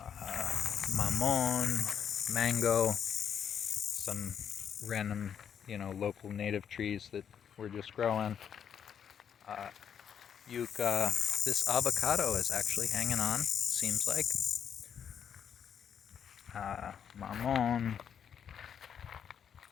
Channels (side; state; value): right; quieter; 8.2 dB